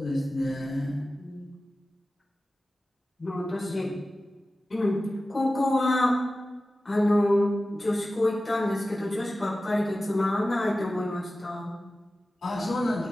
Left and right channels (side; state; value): both; normal; correlation 0.95